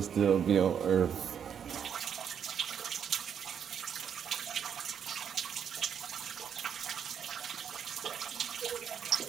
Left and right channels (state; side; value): quieter; left; 8.0 dB